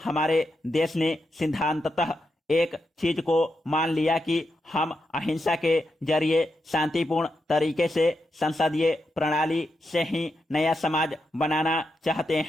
हमारे देश ने सिद्धांततः एक चीज को मान लिया कि हम अहिंसा के जरिए शांतिपूर्ण तरीके से संसदीय प्रणाली से ही नया समाज बनाना चाहते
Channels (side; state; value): both; normal; correlation 0.85